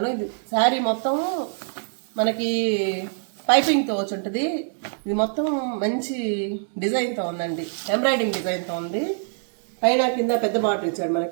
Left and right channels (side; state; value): left; silent; digital silence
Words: ఇది శారీ మొత్తం మనకి పైపింగ్తో వచ్చి ఉంటుంది. ఇది మొత్తం మంచి డిజైన్తో ఉందండి, ఎంబ్రాయిడింగ్ డిజైన్తో ఉంది. పైన కింద పెద్ద బార్డర్ ఇచ్చాడు